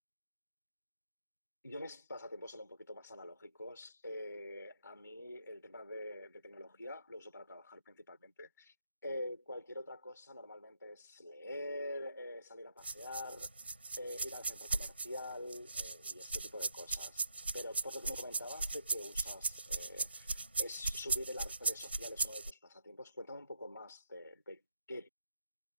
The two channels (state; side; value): inverted; both; correlation -0.76